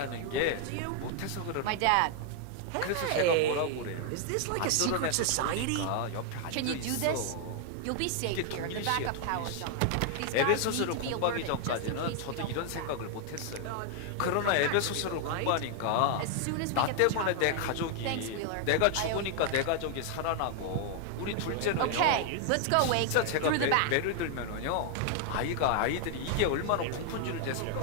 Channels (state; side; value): different; both; correlation 0.00